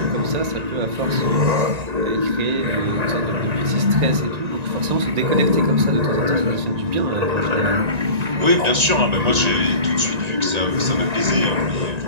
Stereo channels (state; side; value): late; left; 1.9 ms